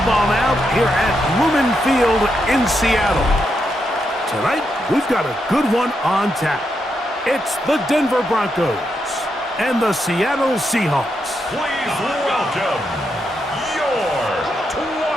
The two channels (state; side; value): normal; both; correlation 0.82